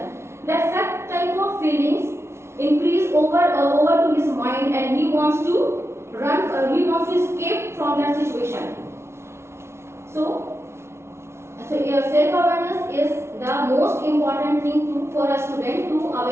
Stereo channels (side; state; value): left; late; 0.13 ms